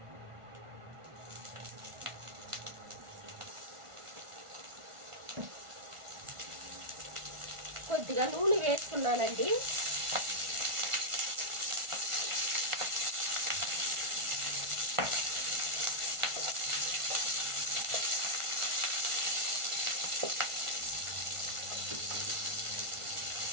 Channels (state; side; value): late; left; 1.4 ms